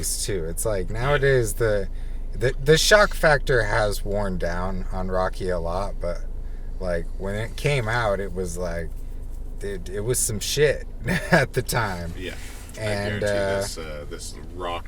too. It's like nowadays the shock factor has worn down on Rocky a lot, but like when it came out, it was like it was some shit at the time. Yeah. And I guarantee this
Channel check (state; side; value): identical; both; correlation 1.00